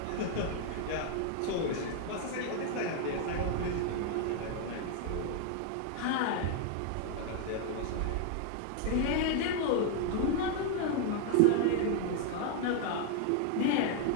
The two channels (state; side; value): different; both; correlation 0.00